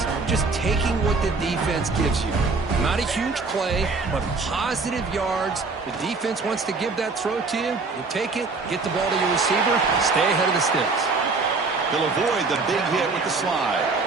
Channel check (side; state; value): left; quieter; 4.1 dB